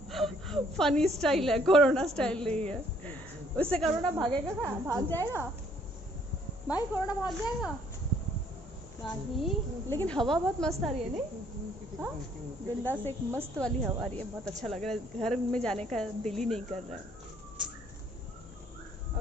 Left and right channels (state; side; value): normal; both; correlation 0.64